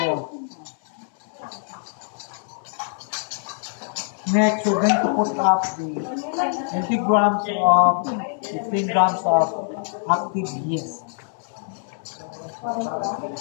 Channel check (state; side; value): silent; right; 63 dB below the other